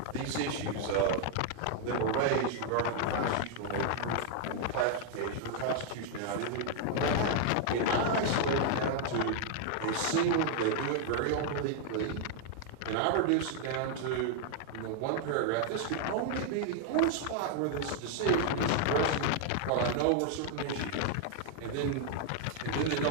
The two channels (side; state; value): both; different; correlation 0.00